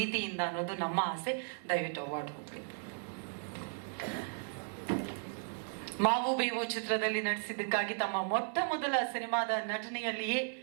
ಅನ್ನೋದು ನಮ್ಮ ಆಸೆ. ದಯವಿಟ್ಟು ಅವಾರ್ಡ್ ಹೋಗ್ಬೇಕು. ಮಾವು ಬೇವು ಚಿತ್ರದಲ್ಲಿ ನಟಿಸಿದ್ದಕ್ಕಾಗಿ ತಮ್ಮ ಮೊಟ್ಟ ಮೊದಲ ಸಿನಿಮಾದ ನಟನೆಯಲ್ಲಿಯೇ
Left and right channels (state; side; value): silent; left; 54 dB below the other